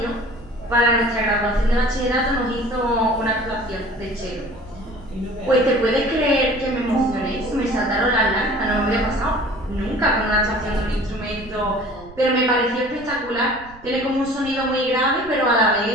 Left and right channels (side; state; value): right; noise; rumble, 19 dB below the sound